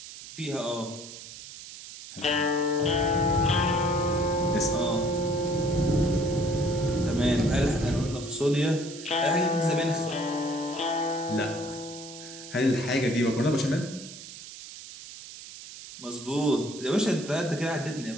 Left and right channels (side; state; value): right; noise; hiss, 14 dB below the sound